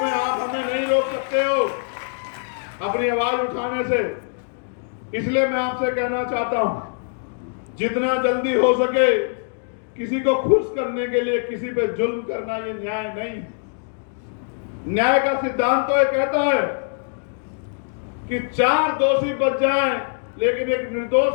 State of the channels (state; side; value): silent; right; digital silence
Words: आप हमें नहीं रोक सकते हो अपनी आवाज उठाने से। इसलिए मैं आपसे कहना चाहता हूं, जितना जल्दी हो सके किसी को खुश करने के लिए किसी पे जुल्म करना ये न्याय नहीं। न्याय का सिद्धांत तो ये कहता है कि 4 दोषी बच जाएं, लेकिन एक निर्दोष